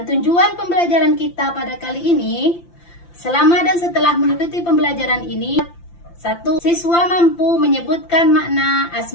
tujuan pembelajaran kita pada kali ini, selama dan setelah mengikuti pembelajaran ini, 1. Siswa mampu menyebutkan makna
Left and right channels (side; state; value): right; late; 5.8 ms